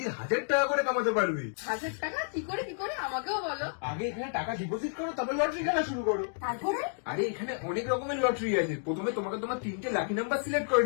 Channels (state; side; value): silent; right; digital silence